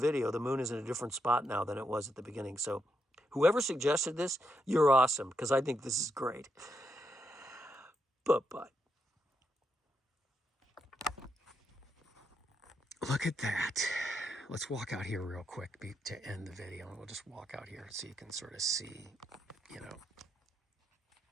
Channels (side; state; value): both; normal; correlation 0.81